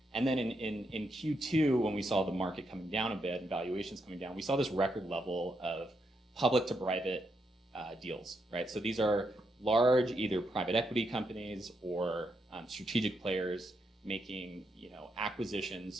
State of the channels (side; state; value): both; normal; correlation 0.80